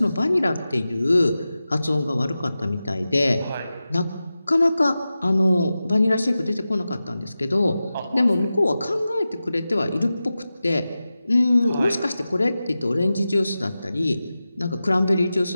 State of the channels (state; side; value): inverted; both; correlation -0.94